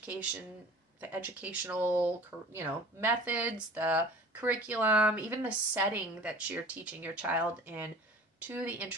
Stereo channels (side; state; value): both; normal; correlation 0.43